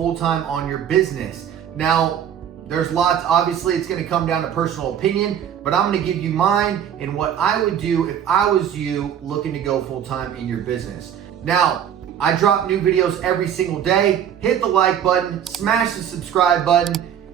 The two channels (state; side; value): quieter; left; 9.2 dB